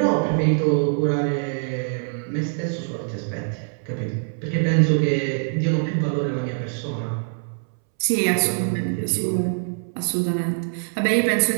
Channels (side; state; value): left; silent; 63 dB below the other